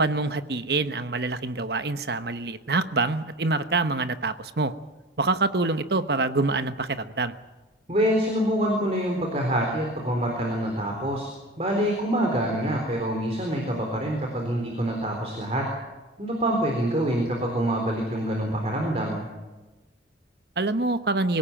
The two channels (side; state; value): both; normal; correlation 0.38